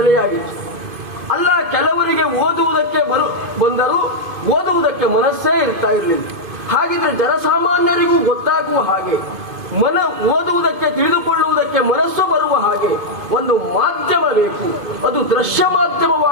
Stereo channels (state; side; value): late; left; 2.5 ms